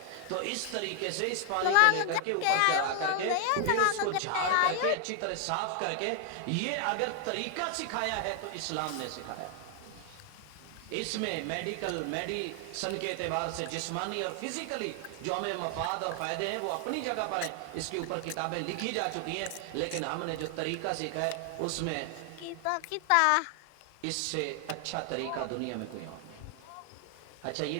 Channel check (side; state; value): both; different; correlation 0.00